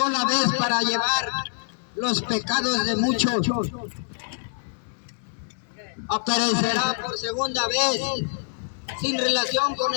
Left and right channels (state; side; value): silent; right; digital silence